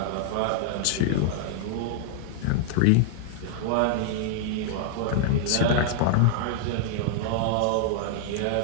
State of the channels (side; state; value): both; different; correlation -0.01